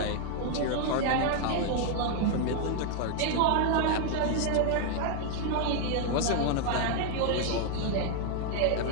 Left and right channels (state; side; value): different; both; correlation 0.00